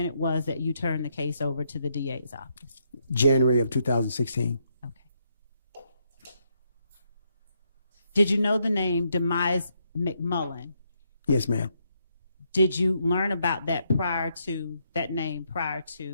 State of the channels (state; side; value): inverted; both; correlation -0.76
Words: it was that you turned the case over to the DA's office? January of 2016. Okay. Did you know the name Demise McMullen? Yes, ma'am. Did you learn about that name prior